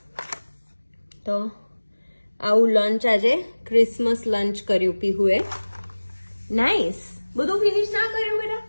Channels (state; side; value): inverted; both; correlation -1.00